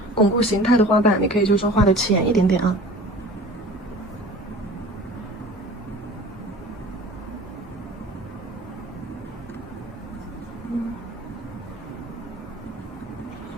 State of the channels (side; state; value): both; normal; correlation 0.42